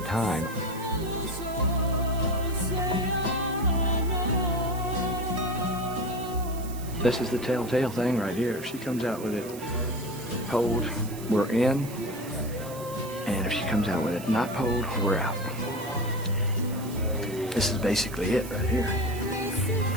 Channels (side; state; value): right; noise; hiss, 15 dB below the sound